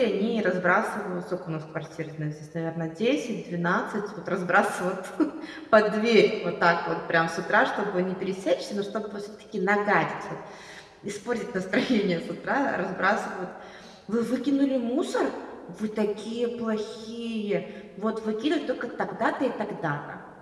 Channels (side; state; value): both; identical; correlation 1.00